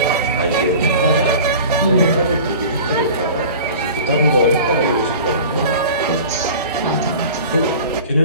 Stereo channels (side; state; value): both; inverted; correlation -0.40